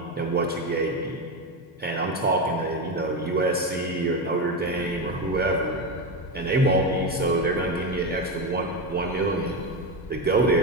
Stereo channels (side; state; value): both; normal; correlation 0.14